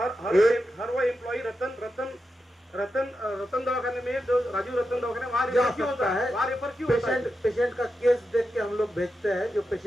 वो एम्प्लॉई रतन दवाखाने में, जो राजीव रतन दवाखाने वहाँ रेफर क्यों होता है, वहाँ रेफर क्यों होता है? पेशेंट का केस देख के हम लोग भेजते हैं. जो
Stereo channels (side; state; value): both; normal; correlation 0.88